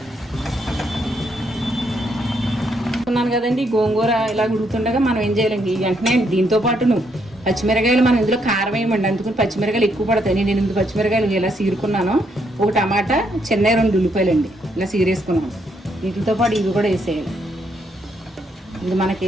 అనుకున్నాను కదండి, గోంగూర ఇలా ఉడుకుతుండగా మనం ఏం చేయాలండి, వెంటనే దీంతో పాటును పచ్చిమిరకాయలు మనం ఇందులో కారం వేయమండి, అందుకని పచ్చిమిరకాయలు ఎక్కువ పడతాయి. నేను 8 పచ్చిమిరకాయలు ఇలా సీరుకున్నాను, ఒక టమాటా, చిన్న 2 ఉల్లిపాయలండి ఇలా సీరేసుకున్నాను. వీటితో పాటు ఇవి కూడా వేసేయాలి. ఇది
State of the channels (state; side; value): normal; both; correlation 0.74